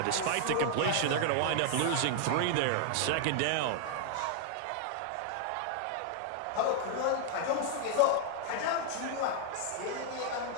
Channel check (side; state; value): both; different; correlation 0.00